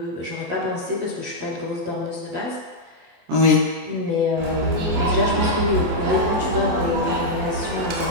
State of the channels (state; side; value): late; left; 24 ms